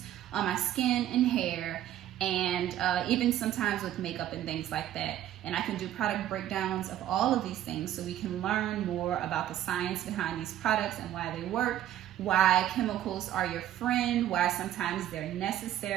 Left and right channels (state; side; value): quieter; left; 12.2 dB